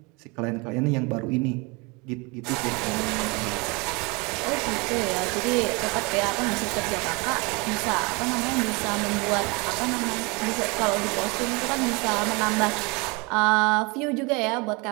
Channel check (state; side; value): quieter; left; 28.1 dB